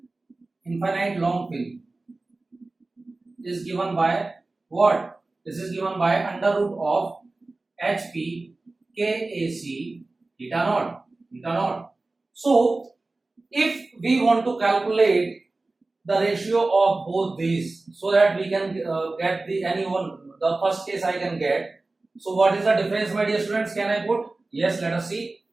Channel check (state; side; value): quieter; left; 3.2 dB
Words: what? This is given by under root of HP KAC theta naught. So if we want to calculate the ratio of both these so that we can get the first case I can get. So what is the difference, my dear students? Can I put? Yes, let us see.